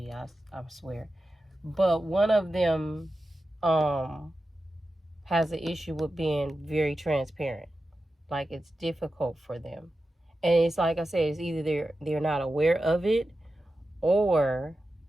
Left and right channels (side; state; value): both; normal; correlation 0.92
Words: I swear. But one of them has an issue with being very transparent. Like, it's difficult for them. And it's like I said, it's either they're not aware of it, or